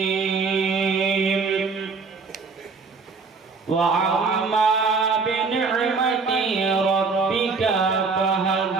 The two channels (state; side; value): quieter; left; 4.6 dB